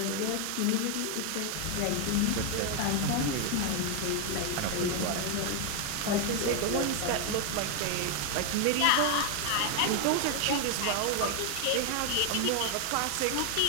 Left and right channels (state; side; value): different; both; correlation 0.01